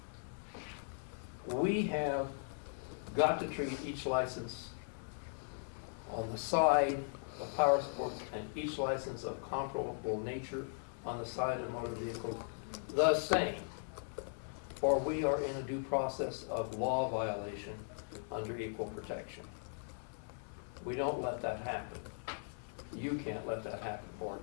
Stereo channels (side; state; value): right; silent; 52 dB below the other